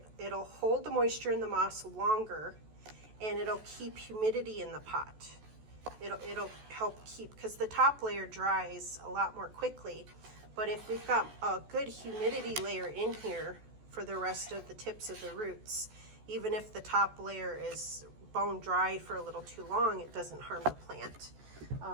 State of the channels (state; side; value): late; left; 14 ms